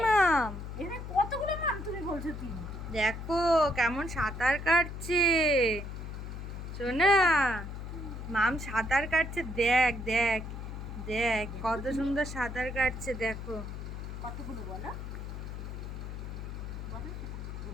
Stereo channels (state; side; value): noise; left; hum, 8 dB below the sound